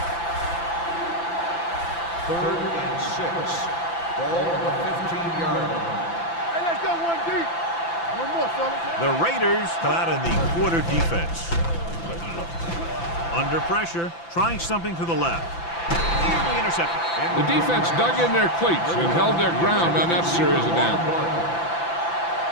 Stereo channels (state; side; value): late; right; 5.9 ms